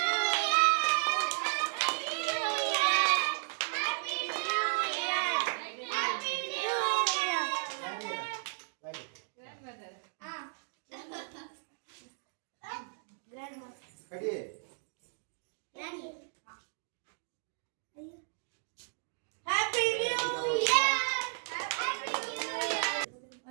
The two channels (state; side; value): silent; left; digital silence